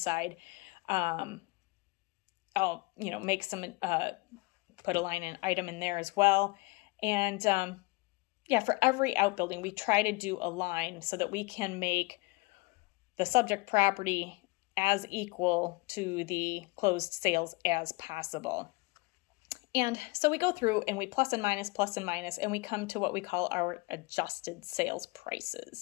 I'll, make some, put a line item in there as well. And, for every outbuilding, we try to do a line so that we can make the subject property as equal to the closed sales as possible. And so we go through and we plus and minus, and we come to what we call our adjusted sales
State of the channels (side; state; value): right; quieter; 25.2 dB